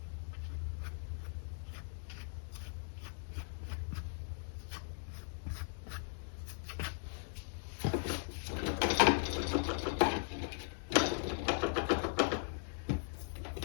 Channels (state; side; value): silent; right; digital silence